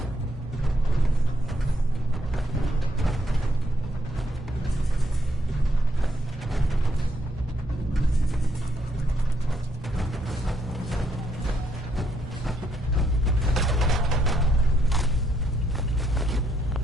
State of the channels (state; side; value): normal; both; correlation 0.74